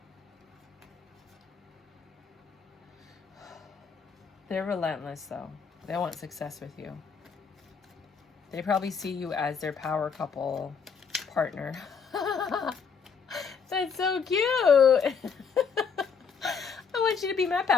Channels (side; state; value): right; quieter; 6.0 dB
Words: They're relentless though. They want success with you. They probably see you as their power couple partner. That's so cute. I want you to be my